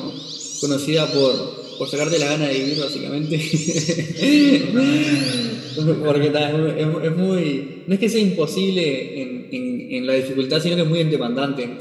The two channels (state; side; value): identical; both; correlation 1.00